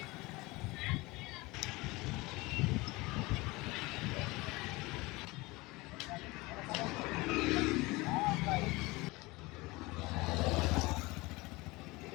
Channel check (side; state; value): right; quieter; 22.7 dB